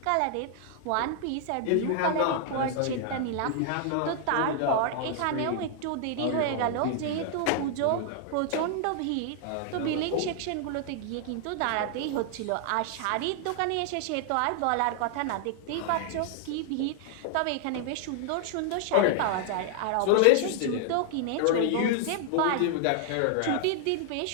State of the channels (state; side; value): different; both; correlation 0.00